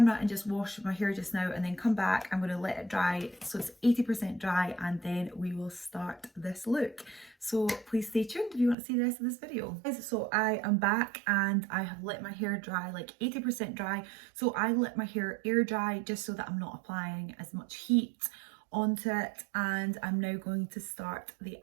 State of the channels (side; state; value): left; drops out; at 8.8 s